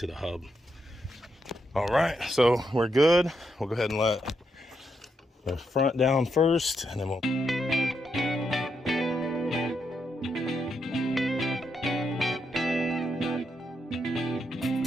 the hub. All right, so we're good. We'll go ahead and let the front down first, and then we'll...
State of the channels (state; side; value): normal; both; correlation 0.81